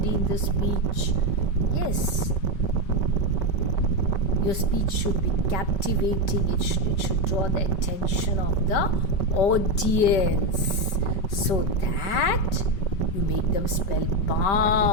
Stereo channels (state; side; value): late; right; 5.3 ms